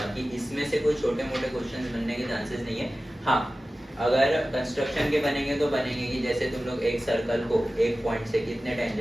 इसमें से कोई छोटे मोटे क्वेश्चन बनने के चांसेस नहीं है। हाँ, अगर कंस्ट्रक्शन के बनेंगे तो बनेंगे कि जैसे तुम लोग एक सर्कल को एक पॉइंट से कितने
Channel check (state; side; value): normal; both; correlation 0.96